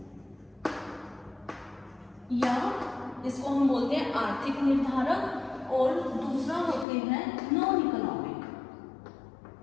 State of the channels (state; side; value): drops out; right; at 6.9 s